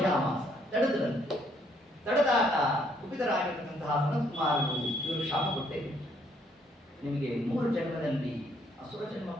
ತಡೆದ್ರಂತೆ. ತಡೆದಾಗ ಕುಪಿತರಾಗಿರ್ತಕ್ಕಂತಹ ಸನತ್ಕುಮಾರರು ಇವರು ಶಾಪ ಕೊಟ್ಟೇವೆ, ನಿಮಗೆ 3 ಜನ್ಮದಲ್ಲಿ ಅಸುರ ಜನ್ಮ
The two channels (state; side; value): normal; both; correlation 0.69